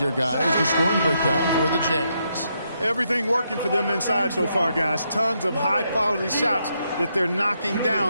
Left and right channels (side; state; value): both; inverted; correlation -0.79